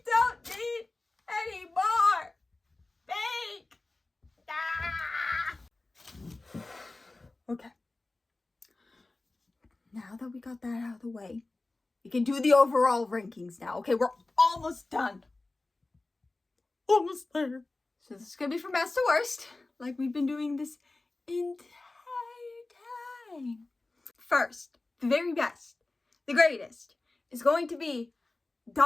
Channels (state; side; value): quieter; right; 3.2 dB